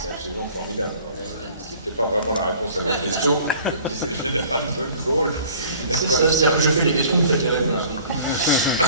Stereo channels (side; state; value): both; inverted; correlation -0.50